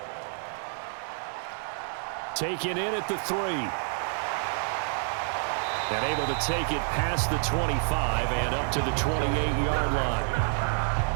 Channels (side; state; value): left; silent; 57 dB below the other